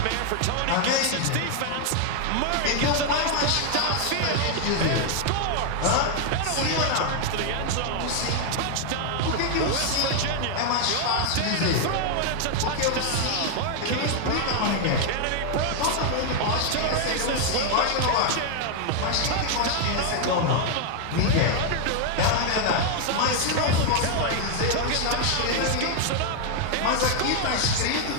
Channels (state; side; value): different; both; correlation 0.00